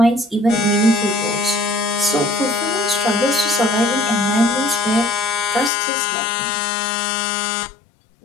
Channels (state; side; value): drops out; right; at 5.7 s